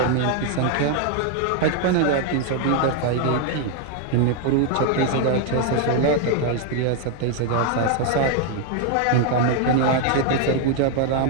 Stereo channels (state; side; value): different; both; correlation 0.00